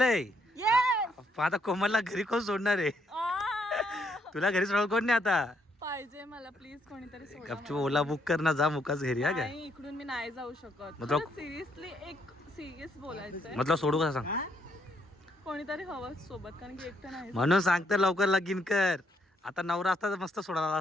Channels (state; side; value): normal; both; correlation 0.73